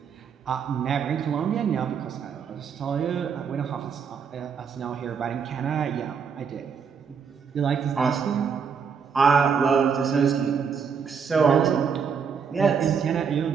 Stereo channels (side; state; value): left; quieter; 6.4 dB